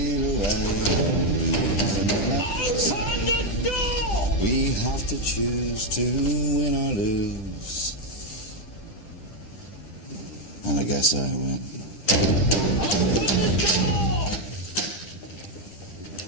away. Open the door! We have to choose to win or lose. And I guess I win. Open the door!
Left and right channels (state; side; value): late; right; 9.7 ms